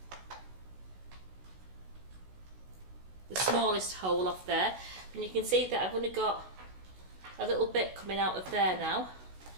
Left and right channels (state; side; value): late; left; 16 ms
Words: the smallest hole off there. And you can see that I've only got a little bit coming out of there now.